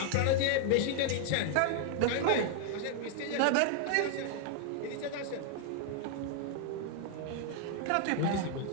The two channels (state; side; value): different; both; correlation 0.00